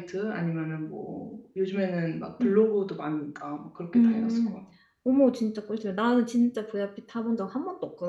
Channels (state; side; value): identical; both; correlation 1.00